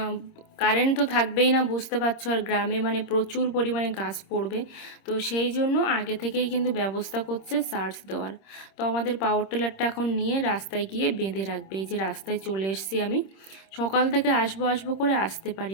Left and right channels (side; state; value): right; late; 26 ms